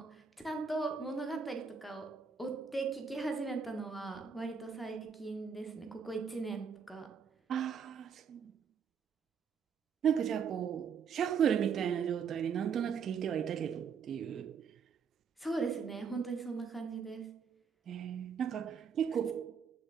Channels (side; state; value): left; quieter; 6.4 dB